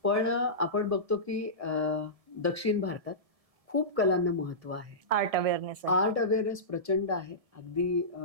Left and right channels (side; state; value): left; late; 1.7 ms